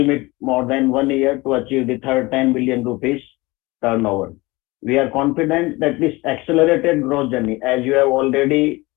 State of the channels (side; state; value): right; quieter; 22.3 dB